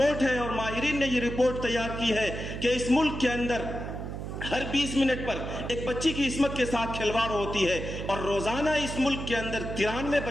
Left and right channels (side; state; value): right; noise; hum, 6 dB below the sound